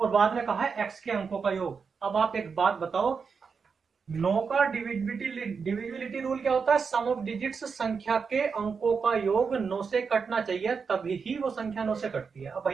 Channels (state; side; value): quieter; left; 5.6 dB